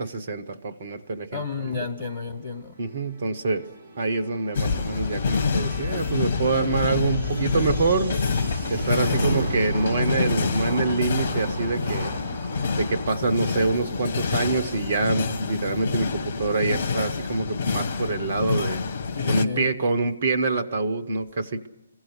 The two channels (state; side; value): inverted; both; correlation -0.71